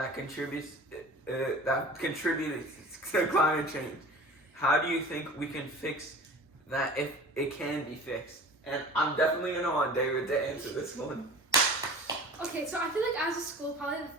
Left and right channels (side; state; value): both; normal; correlation 0.41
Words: contributes to climate change? How do you think we can fix that if it can be fixed? And I'm definitely gonna want David to answer this one. Okay, so I feel like as a school, probably